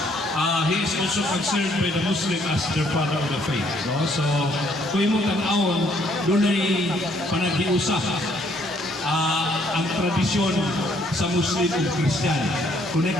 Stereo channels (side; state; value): both; normal; correlation 0.67